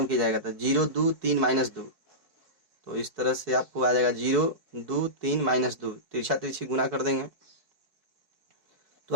की जाएगा। तो 0 2 3 -2। तो इस तरह से आपको आ जाएगा 0 2 3 -2, तिरछा तिरछी गुना कर देंगे तो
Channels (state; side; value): late; left; 4.7 ms